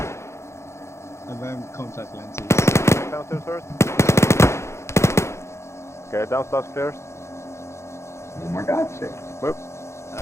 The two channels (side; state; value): right; late; 0.13 ms